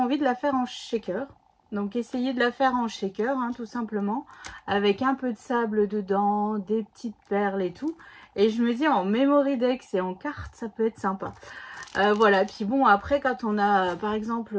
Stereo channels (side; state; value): both; identical; correlation 1.00